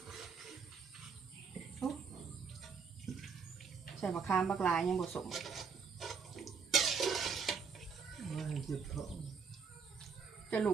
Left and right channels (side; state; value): left; quieter; 5.8 dB